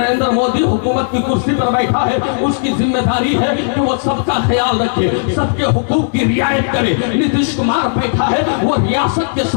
मोदी हुकूमत की कुर्सी पर बैठा है, उसकी जिम्मेदारी है कि वो सबका ख्याल रखे, सबके हुकूक की रियायत करे। नीतीश कुमार बैठा है, वो रियासत के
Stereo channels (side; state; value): right; silent; digital silence